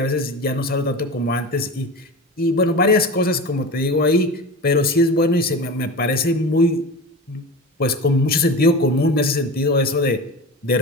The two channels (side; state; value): both; normal; correlation 0.29